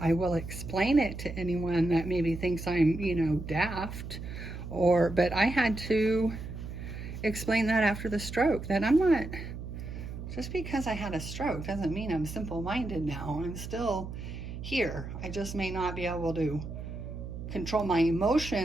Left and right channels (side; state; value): right; noise; hum, 8 dB below the sound